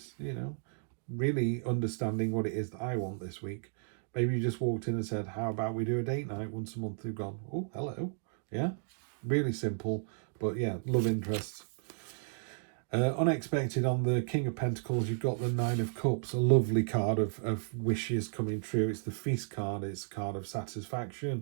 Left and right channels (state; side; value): silent; left; digital silence